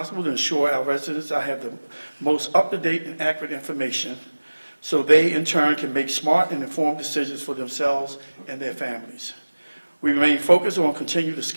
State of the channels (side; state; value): both; inverted; correlation -1.00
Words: to ensure our residents I have the most up-to-date and accurate information so they, in turn, can make smart and informed decisions for themselves and their families. We remain focused on continuing to